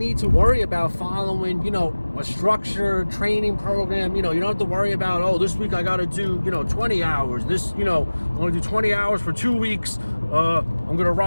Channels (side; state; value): both; inverted; correlation -1.00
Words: to worry about following, a structured training program. You don't have to worry about, oh, this week I got to do, 20 hours. This, I'm going to do 20 hours for 2 weeks. I'm going to